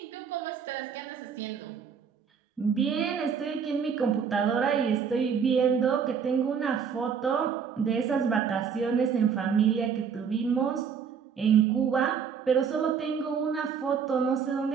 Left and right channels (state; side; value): quieter; left; 6.8 dB